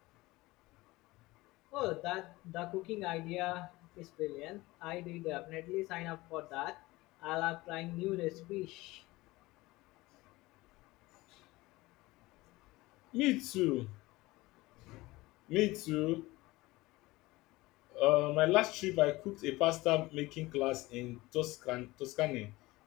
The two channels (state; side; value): quieter; right; 20.2 dB